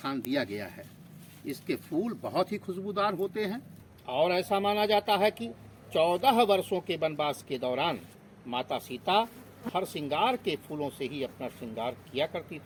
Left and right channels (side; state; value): both; identical; correlation 1.00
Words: दिया गया है। इसके फूल बहुत ही खुशबूदार होते हैं और ऐसा माना जाता है कि 14 वर्षों के वनवास के दौरान माता सीता हरसिंगार के फूलों से ही अपना श्रृंगार किया करती